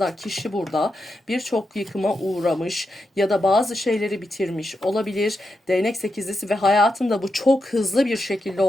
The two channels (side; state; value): both; normal; correlation 0.86